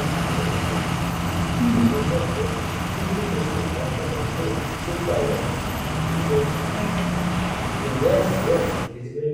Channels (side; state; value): both; identical; correlation 1.00